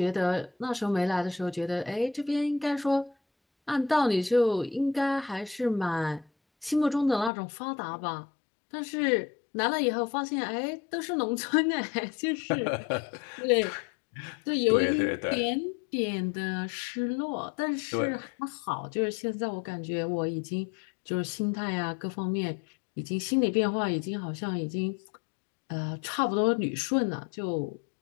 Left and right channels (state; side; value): drops out; right; at 7.3 s